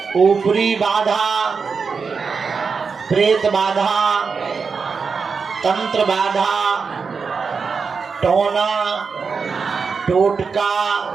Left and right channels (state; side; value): quieter; left; 5.3 dB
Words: ऊपरी बाधा, प्रेत बाधा, तंत्र बाधा, टोना टोटका